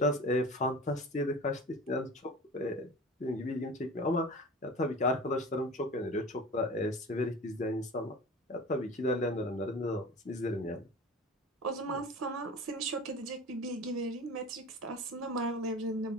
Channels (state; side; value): normal; both; correlation 0.36